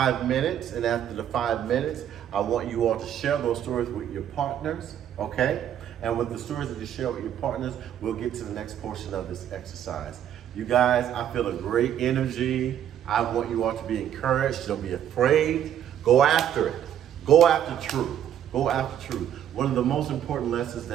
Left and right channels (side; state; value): left; quieter; 10.2 dB